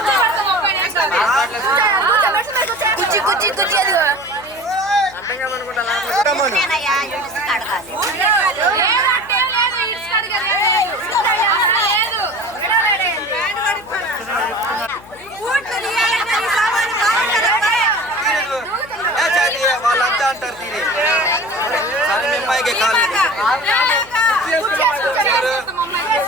వాళ్ళంతా అంటారు తీరే సరే మిమ్మాయికే కాదు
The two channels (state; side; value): noise; left; hum, 23 dB below the sound